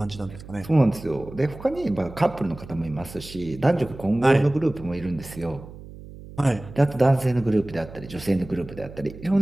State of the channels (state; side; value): noise; right; hum, 16 dB below the sound